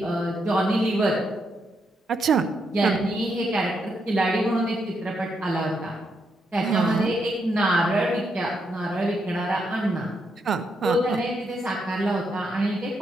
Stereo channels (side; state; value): both; normal; correlation 0.80